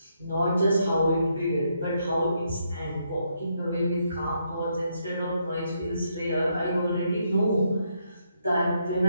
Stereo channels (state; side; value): inverted; both; correlation -0.77